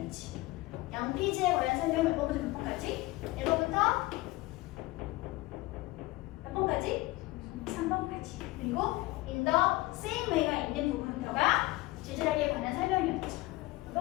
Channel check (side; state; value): right; quieter; 19.9 dB